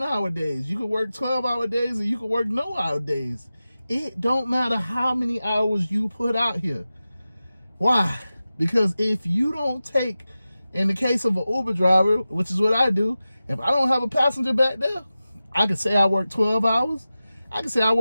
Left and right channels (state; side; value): inverted; both; correlation -0.95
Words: days. You can work 12-hour days or you can work no-hour days. It don't matter how many hours you put out here. Why? Because if you don't take, in the case of an Uber driver, which is what I do, if I don't have a passenger back there, I can say I work 12 hours. I can say I